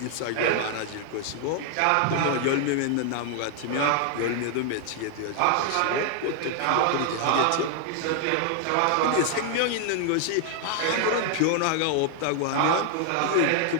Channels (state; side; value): different; both; correlation 0.00